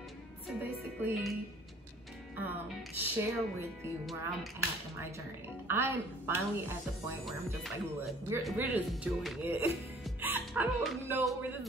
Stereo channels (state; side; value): normal; both; correlation 0.53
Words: to basically share with you where I'm at in my journey. I'm finally at the point where I'm just like, look, we're just doing it. I don't know where this